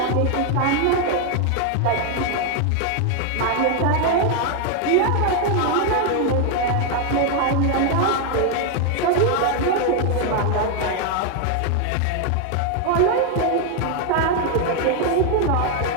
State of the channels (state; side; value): different; both; correlation 0.01